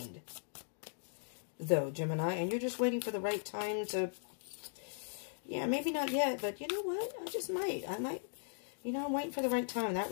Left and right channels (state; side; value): silent; right; digital silence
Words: though, Gemini, and you're just waiting for the right time to, yeah, maybe not yet, but you know what? I might, you know, I'm waiting for the right time, that